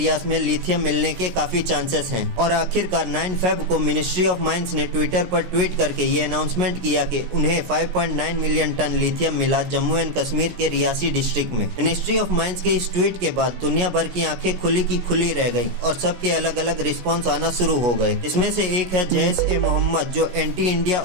में लिथियम मिलने के काफी चांसेस हैं। और आखिरकार 9 फेब को मिनिस्ट्री ऑफ माइंस ने ट्विटर पर ट्वीट करके ये अनाउंसमेंट किया कि उन्हें 5.9 मिलियन टन लिथियम मिला जम्मू एंड कश्मीर के रियासी डिस्ट्रिक्ट में। मिनिस्ट्री ऑफ माइंस के इस ट्वीट के बाद दुनिया भर की आंखें खुली की खुली रह गई और सबके अलग अलग रिस्पॉन्स आना शुरू हो गए। इसमें से एक है जैश-ए-मोहम्मद, जो एंटी इंडिया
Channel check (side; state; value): left; late; 17 ms